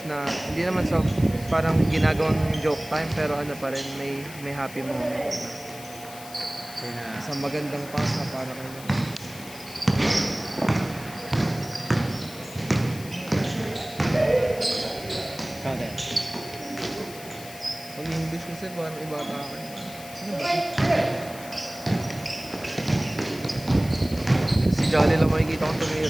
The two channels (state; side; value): noise; left; hiss, 16 dB below the sound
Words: na hindi naman sa parang ginagawang joke time, pero ano pa rin, may happy moment. Sa magandang pass na para kayo. Kada. Pag English kasi parang iba ka. Ano ba? Si Jolly lang makikita kong